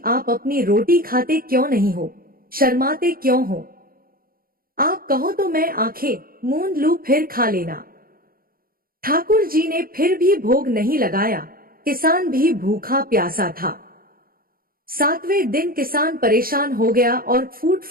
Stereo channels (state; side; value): late; left; 0.42 ms